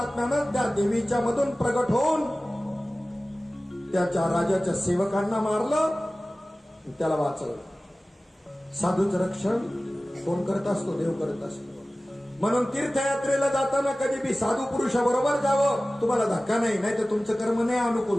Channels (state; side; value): normal; both; correlation 0.97